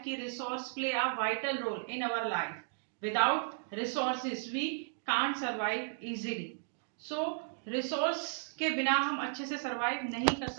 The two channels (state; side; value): silent; left; digital silence